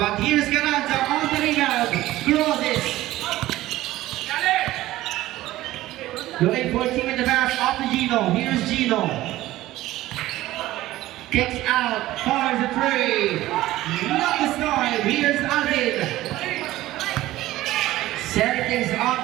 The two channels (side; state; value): left; quieter; 16.0 dB